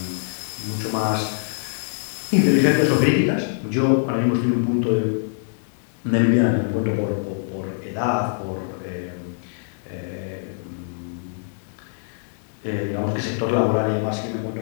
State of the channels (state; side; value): silent; right; digital silence